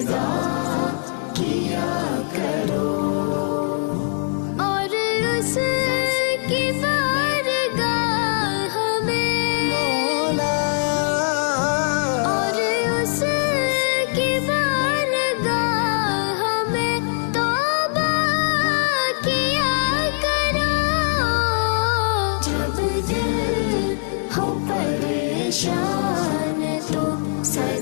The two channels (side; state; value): right; silent; 65 dB below the other